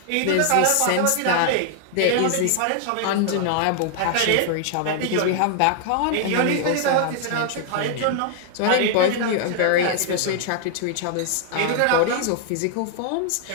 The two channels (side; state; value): both; different; correlation 0.00